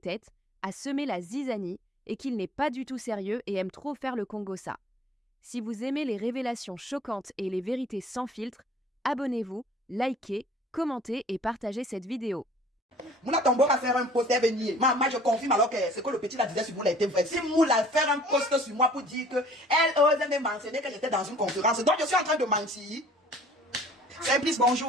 à semer la zizanie et qu'il n'est pas du tout sérieux et aime trop faire le Congossa. Si vous aimez les révélations choquantes et les vérités sans filtre, abonnez-vous, likez, commentez et partagez cette vidéo. Moula Tombo va faire un post et venir. Moi, je confirme alors que ce que le petit la disait sur Moula était vrai. Si Moula faire un post sur moi pour dire qu'elle osait me mentionner que j'étais dans une conférence, donc je suis en train de mentir. C'est plus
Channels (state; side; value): normal; both; correlation 0.52